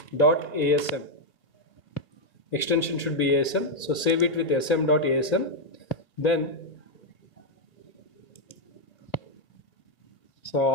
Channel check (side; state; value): right; late; 2.5 ms